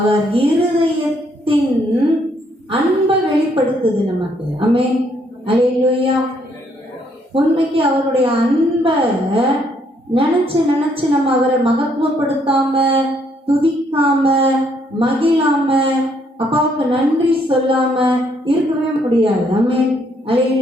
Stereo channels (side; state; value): both; normal; correlation 0.70